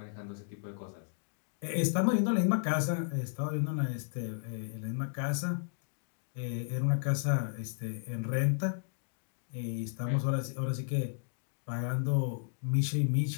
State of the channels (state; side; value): silent; right; digital silence